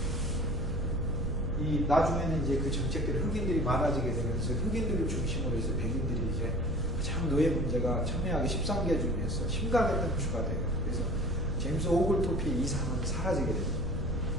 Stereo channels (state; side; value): noise; right; rumble, 3 dB below the sound